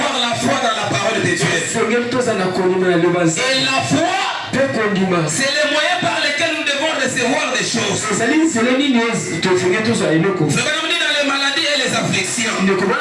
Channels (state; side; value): identical; both; correlation 1.00